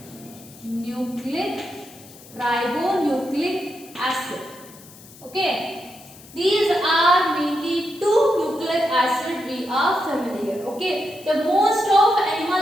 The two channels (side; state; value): left; noise; hiss, 21 dB below the sound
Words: Ribonucleic acid. Okay, these are mainly two nucleic acid we are familiar. Okay, the most of animal